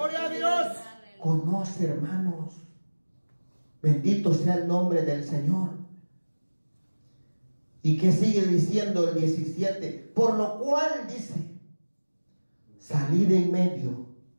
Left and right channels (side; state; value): both; inverted; correlation -1.00